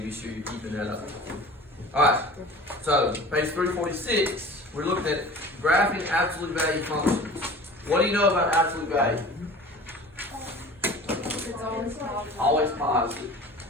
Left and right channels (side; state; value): both; normal; correlation 0.41